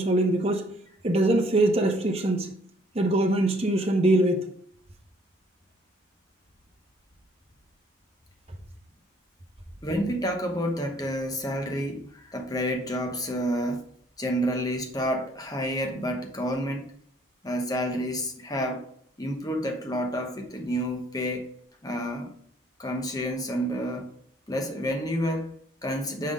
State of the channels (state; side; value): normal; both; correlation 0.61